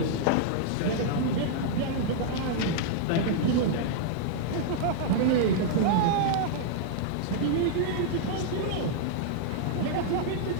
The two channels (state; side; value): different; both; correlation -0.01